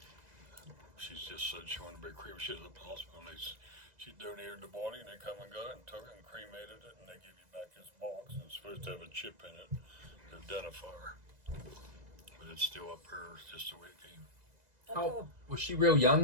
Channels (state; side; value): late; left; 2.0 ms